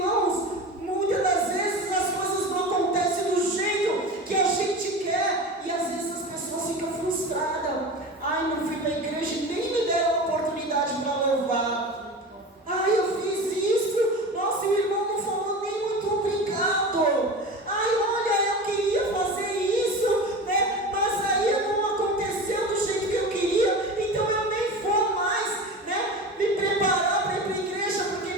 muitas das vezes as coisas não acontecem do jeito que a gente quer, e às vezes as pessoas ficam frustradas. Ai, não fui para a igreja e nem me deram a oportunidade para louvar. Ai, eu fiz isso, nossa, o irmão não falou nem muito obrigado. Ai, olha, eu queria fazer isso, né? Mas aí não aconteceu do jeito que eu queria, então eu nem vou mais, né? Me preparar para ir para a igreja, porque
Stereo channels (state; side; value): normal; both; correlation 0.30